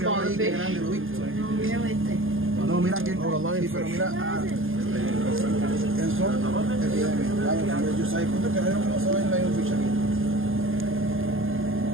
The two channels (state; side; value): late; left; 0.59 ms